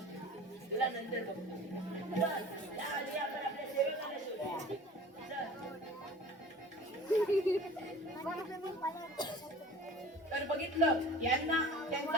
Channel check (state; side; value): normal; both; correlation 0.43